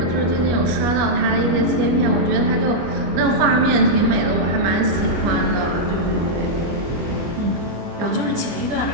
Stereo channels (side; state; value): left; late; 25 ms